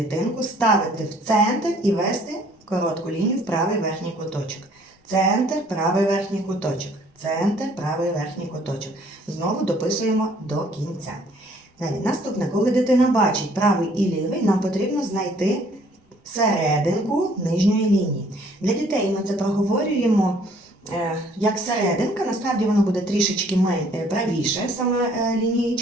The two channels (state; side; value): normal; both; correlation 0.60